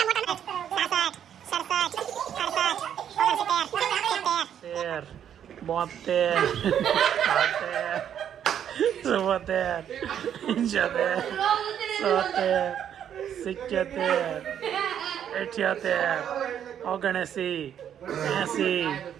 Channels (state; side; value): quieter; left; 9.4 dB